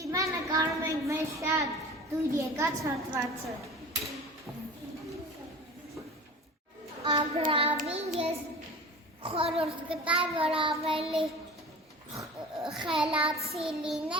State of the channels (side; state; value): both; normal; correlation 0.37